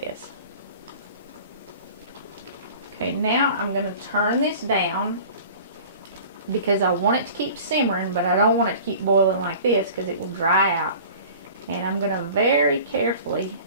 Okay, now I'm going to turn this down because I want it to keep simmering, but I don't want it to keep boiling like this because it will dry out. And I'm going to very carefully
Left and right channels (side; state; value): both; inverted; correlation -0.43